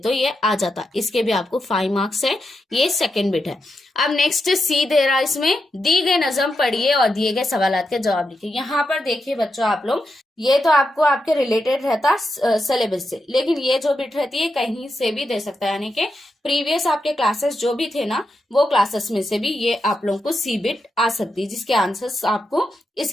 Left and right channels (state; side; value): normal; both; correlation 0.86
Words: ये आ जाता। इसके भी आपको 5 मार्क्स है। ये सेकंड बिट है। अब नेक्स्ट सी दे रहा है, इसमें दी गई नजम पढ़िए और दिए गए सवालात के जवाब लिखिए। यहाँ पर देखिए बच्चों आप लोग, ये तो आपको आपके रिलेटेड रहता सिलेबस से, लेकिन ये जो बिट रहती है कहीं से भी दे सकता है, यानी कि प्रीवियस आपके क्लासेस जो भी थे ना, वो क्लासेस में से भी ये आप लोगों को सी बिट आ सकती है, जिसके आंसर्स आपको